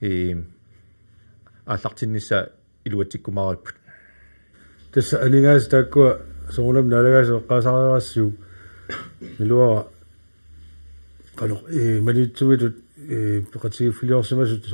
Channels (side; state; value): both; inverted; correlation -1.00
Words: ааллартиннисса илуатсиккумаариппут tässä aningaas taakkua soonam nalagaas eqqaasaariarassuu milua qanoq manitsumitut peqatigifiliorsimasut